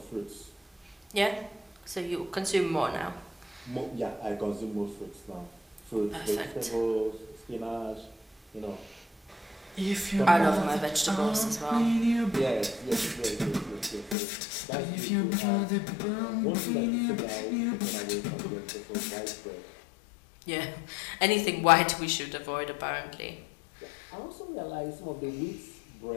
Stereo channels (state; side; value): drops out; right; at 14.2 s